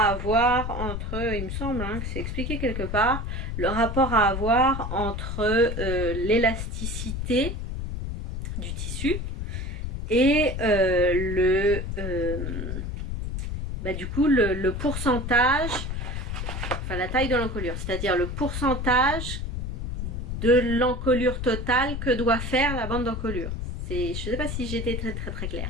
avoir entre, il me semble hein, que c'est expliqué quelque part, le rapport à avoir entre l'élasticité du tissu et du coup le pourcentage, enfin la taille de l'encolure, c'est-à-dire le pourcentage de l'encolure totale que doit faire la bande d'encolure. Je ne sais pas si j'étais très claire.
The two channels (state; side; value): noise; left; rumble, 4 dB below the sound